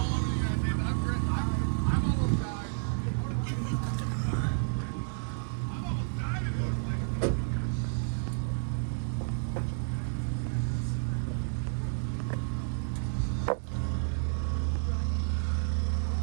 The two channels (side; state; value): left; silent; digital silence